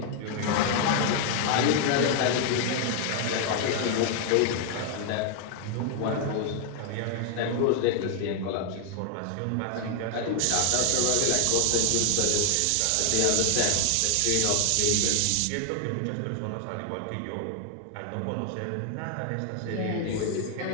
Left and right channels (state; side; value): different; both; correlation 0.00